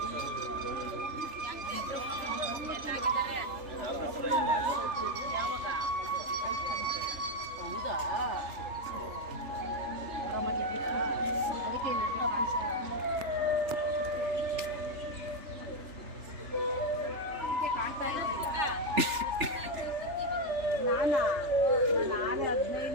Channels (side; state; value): left; late; 3.4 ms